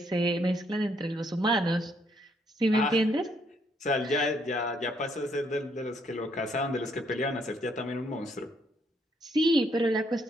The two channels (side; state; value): both; normal; correlation 0.71